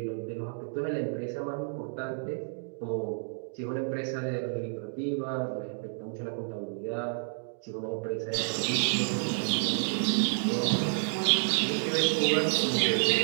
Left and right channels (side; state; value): left; silent; digital silence